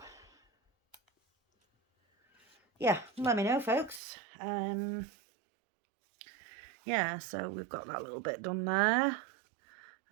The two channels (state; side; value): drops out; left; at 4.0 s